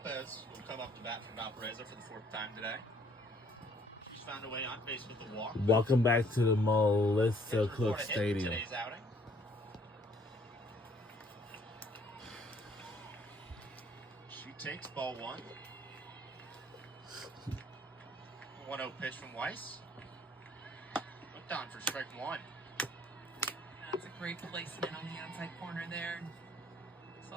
who will come up to bat for Valparaiso for the 4th time today. She's found a way on base with the walk. Welcome back to the Melissa Cook Stadium. Today's outing. 6, ball 1. 1-0 pitch from Weiss. Looked on for strike 1. That's a great placement on the outside corner there. Saw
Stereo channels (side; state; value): both; normal; correlation 0.62